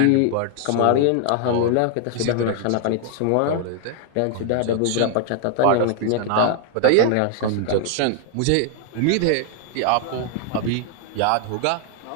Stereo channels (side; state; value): both; different; correlation 0.00